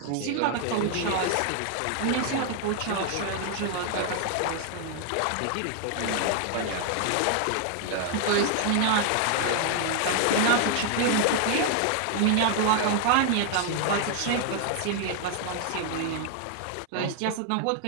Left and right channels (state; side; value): different; both; correlation 0.00